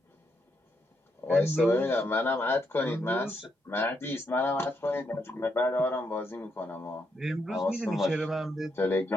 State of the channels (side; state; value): both; normal; correlation 0.79